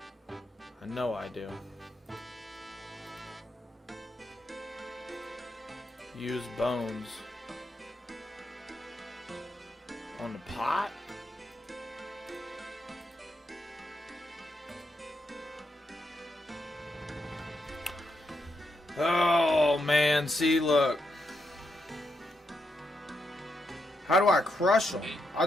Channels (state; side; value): normal; both; correlation 0.82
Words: I know I do. Use bones on the pot. Oh man, see, look. How do I crush them? I